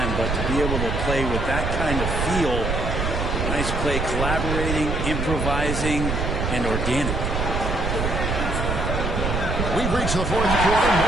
but to be able to play with that kind of feel, nice play, collaborating, improvising, and organic. We've reached the fourth quarter, and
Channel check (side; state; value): right; noise; rumble, 1 dB below the sound